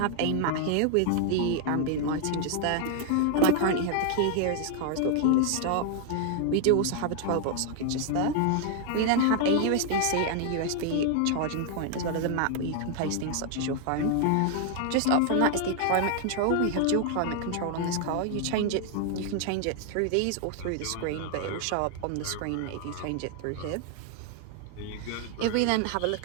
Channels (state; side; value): different; both; correlation 0.00